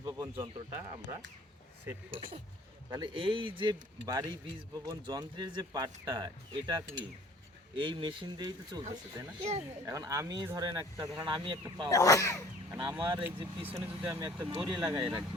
বপন যন্ত্রটা আমরা সেট করব। তাহলে এই যে বাড়ি বীজ বপন যন্ত্রের যে পার্টটা, এটা কি এই মেশিন দিয়েই তো চলতেছে, তাই না? এখন আমি ধরেন আমি একটা পাওয়ার, কারণ আমার এই যে পিছনে যদি আমি একটা দড়ি লাগাই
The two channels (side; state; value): both; normal; correlation 0.53